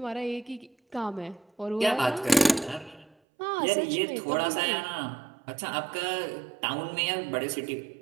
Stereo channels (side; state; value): left; drops out; at 3.2 s